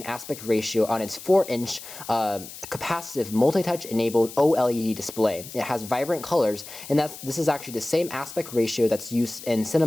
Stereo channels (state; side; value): noise; left; hiss, 14 dB below the sound